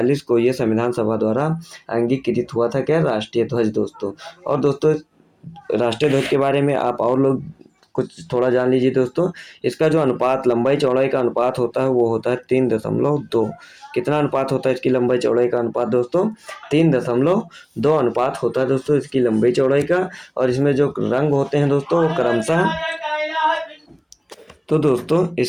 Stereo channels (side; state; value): both; identical; correlation 1.00